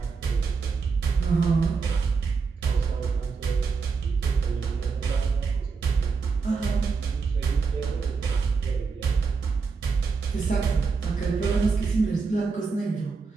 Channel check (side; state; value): left; quieter; 5.0 dB